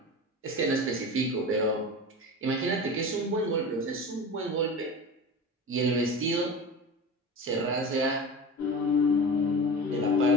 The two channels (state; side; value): normal; both; correlation 0.31